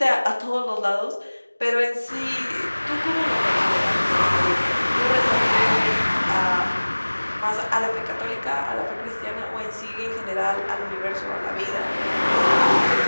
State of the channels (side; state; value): both; inverted; correlation -1.00